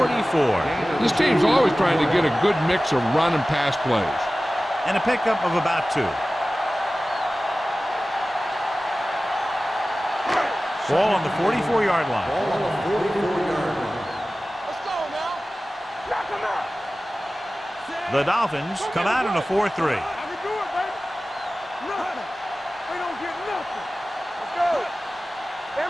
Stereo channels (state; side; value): normal; both; correlation 0.96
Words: This team's always trying to get a good mix of run and pass plays. And a pickup of about 2. Ball on the 44-yard line. Ball on the 44-yard line. Let's go now. Knock him out. The Dolphins come out in a 4-3. I can do it, baby. Nothing. We don't get nothing. Let's go.